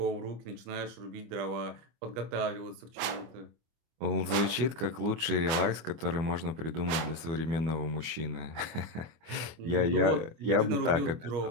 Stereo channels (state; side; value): late; left; 25 ms